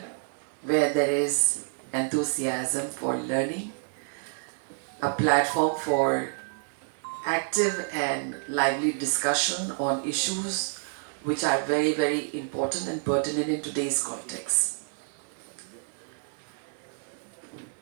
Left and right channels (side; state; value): left; silent; 59 dB below the other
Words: where there is enthusiasm for learning, a platform for active and lively discussion on issues which are very, very important and pertinent in today's context.